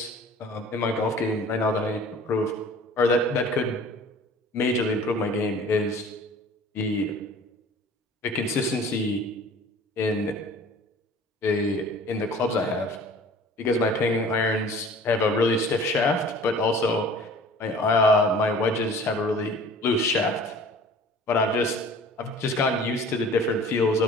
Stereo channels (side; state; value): both; normal; correlation 0.47